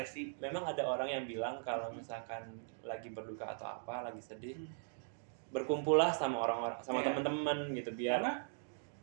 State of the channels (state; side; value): silent; left; digital silence